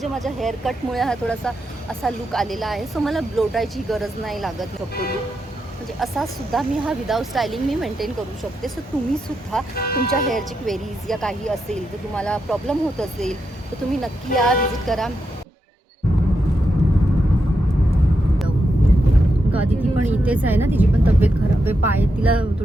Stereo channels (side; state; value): both; normal; correlation 0.85